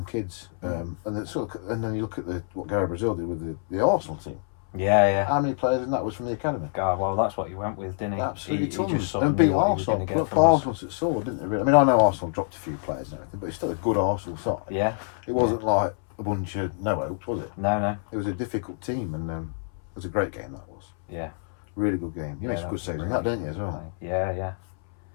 kids, and then you look at what Gary Brazil did with the Arsenal team. Yeah. How many players in that was from the academy? God, well, that's what he went with, didn't he? Absolutely He tons. just sort And of beat knew what he was Arsenal. gonna get Look, from us. Arsenal at sword, didn't they? Really? I mean, I know Arsenal dropped a few players and everything, but it's still a good Arsenal side. Yeah. It wasn't like a bunch of no hopes, was it? No. It was a difficult team, and it was a great game. That was Yeah. really good game. You made Yeah, some that good was saves in really that, didn't you, as well? Yeah.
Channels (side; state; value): right; silent; 61 dB below the other